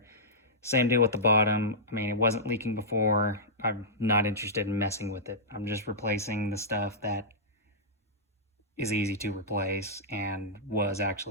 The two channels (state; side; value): normal; both; correlation -0.13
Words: Same deal with the bottom. I mean, it wasn't leaking before. I'm not interested in messing with it. I'm just replacing the stuff that is easy to replace and was